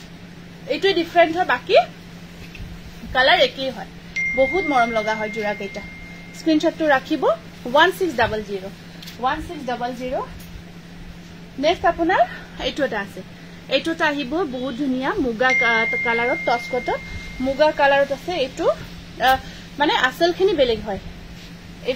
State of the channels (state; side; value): identical; both; correlation 1.00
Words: এইটোই ডিফাৰেন্ট হয় বাকি কালাৰ একেই হয় বহুত মৰম লগা হয় জোৰা কেইটা স্ক্ৰিনশ্বটটো ৰাখিব 1600 নেক্সট আপোনাৰ এইটোটা আছে এইটোটা আহিব বহুত ধুনিয়া মুগা কালাৰত টচ কটন মুগা কালাৰত আছে এইটো মানে আসলখিনি বেলেগ হয়